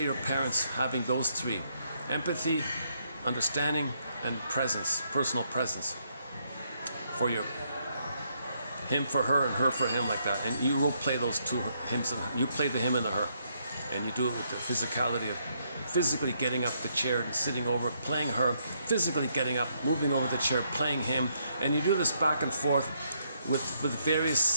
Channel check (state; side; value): inverted; both; correlation -0.74